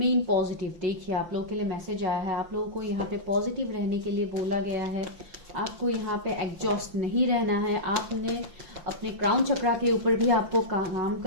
पॉजिटिव, देखिए आप लोगों के लिए मैसेज आया है, आप लोगों को यहाँ पे पॉजिटिव रहने के लिए बोला गया है। आपको यहाँ पे एग्जॉस्ट नहीं रहना है, आपने अपने क्राउन चक्रा के ऊपर भी आपको काम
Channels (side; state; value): left; late; 5.8 ms